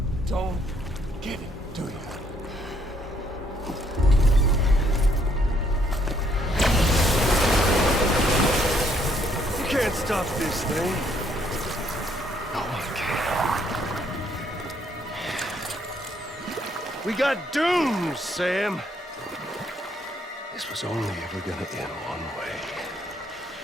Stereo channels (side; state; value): both; normal; correlation 0.69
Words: don't get it, do you? You can't stop this thing. No one can. We got dooms, Sam. This was only ever gonna end one way.